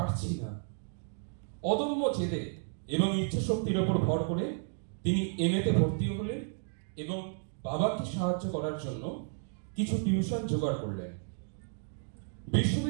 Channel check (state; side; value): silent; left; 56 dB below the other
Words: না। অদম্য জেদে এবং ইচ্ছা শক্তির উপর ভর করে তিনি এমএতে ভর্তি হলেন এবং বাবাকে সাহায্য করার জন্য কিছু টিউশন জোগাড় করলেন।